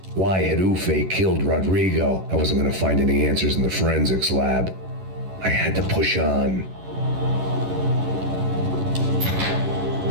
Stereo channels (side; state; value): left; late; 11 ms